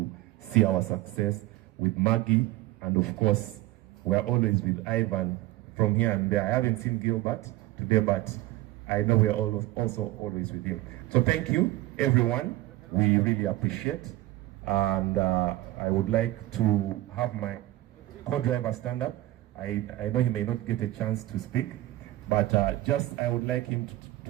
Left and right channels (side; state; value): left; quieter; 17.2 dB